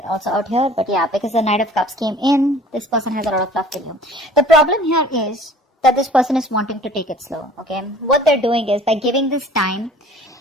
also out here. But yeah, because the Knight of Cups came in, this person has a lot of love for you. The problem here is that this person is wanting to take it slow. Okay, what they're doing is, by giving this time,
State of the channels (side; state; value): both; normal; correlation 0.49